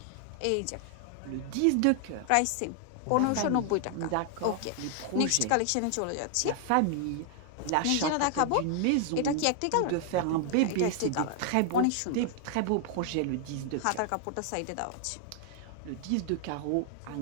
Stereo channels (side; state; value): both; different; correlation 0.00